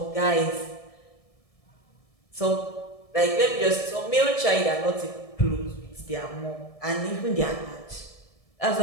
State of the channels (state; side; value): late; right; 1.7 ms